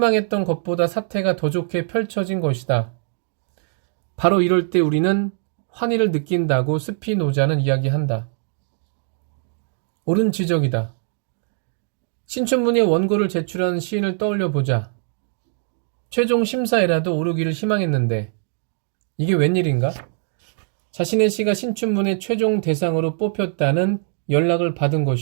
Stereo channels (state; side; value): silent; left; digital silence